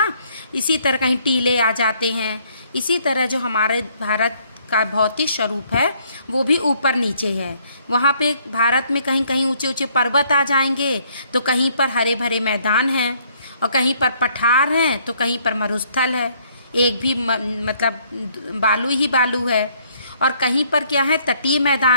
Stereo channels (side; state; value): both; inverted; correlation -0.65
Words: इसी तरह कहीं टीले आ जाते हैं। इसी तरह जो हमारे भारत का भौतिक स्वरूप है वो भी ऊपर नीचे है। वहाँ पे भारत में कहीं कहीं ऊंचे ऊंचे पर्वत आ जाएंगे, तो कहीं पर हरे भरे मैदान हैं, और कहीं पर पठार हैं, तो कहीं पर मरुस्थल है, एक भी मतलब बालू ही बालू है। और कहीं पर क्या है, तटीय